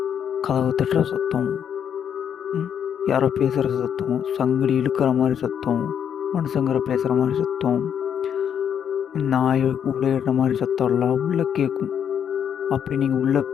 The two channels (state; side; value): quieter; right; 8.4 dB